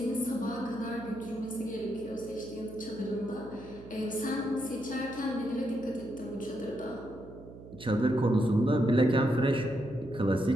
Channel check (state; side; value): noise; right; hum, 16 dB below the sound